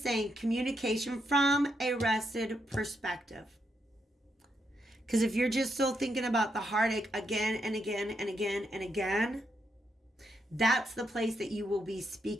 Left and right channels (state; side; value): normal; both; correlation 0.80